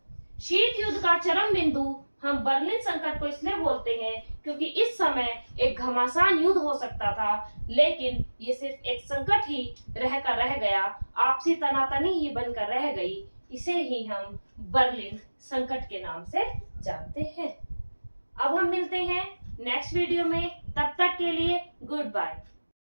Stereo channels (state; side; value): inverted; both; correlation -1.00